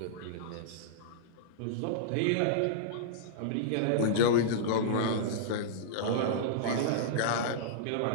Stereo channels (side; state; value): both; different; correlation -0.03